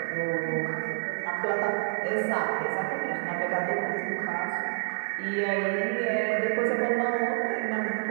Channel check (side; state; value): left; silent; digital silence